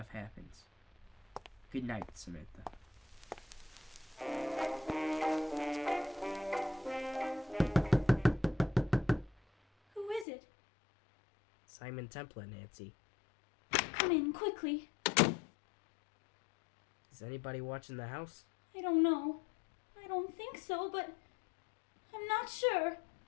happens. Good night, Samantha. Who is it? Simon Templar, Nancy. Come in, quickly. Is anybody watching the house? I don't know. I don't think so, but I'm not sure.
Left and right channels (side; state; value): right; drops out; at 10.2 s